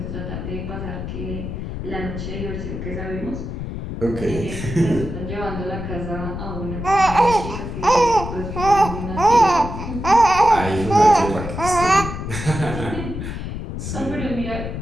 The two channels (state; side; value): noise; left; rumble, 6 dB below the sound